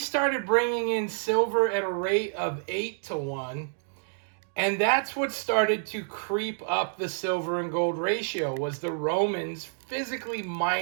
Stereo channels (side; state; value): left; silent; digital silence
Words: bringing in silver at a rate of 8 to 1. And that's what started to creep up the silver and gold ratio, was the Romans physically